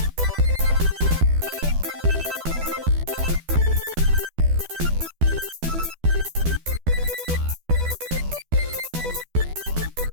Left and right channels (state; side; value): late; left; 12 ms